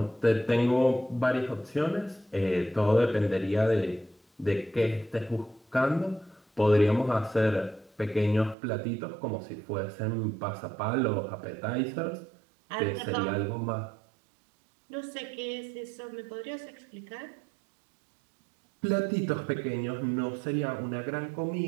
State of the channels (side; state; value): left; drops out; at 8.6 s